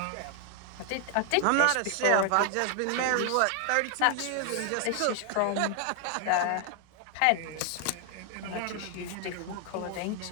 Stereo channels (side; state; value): both; different; correlation 0.00